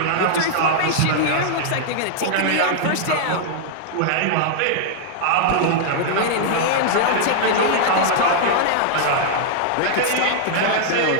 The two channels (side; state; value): both; different; correlation -0.01